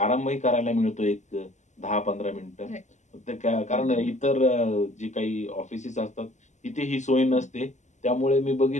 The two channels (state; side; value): late; right; 0.34 ms